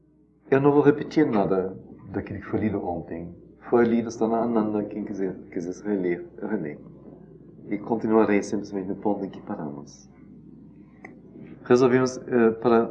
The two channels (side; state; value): both; identical; correlation 1.00